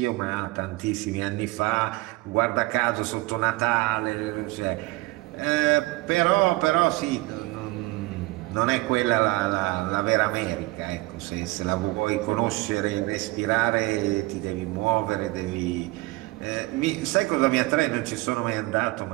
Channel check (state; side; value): quieter; left; 21.5 dB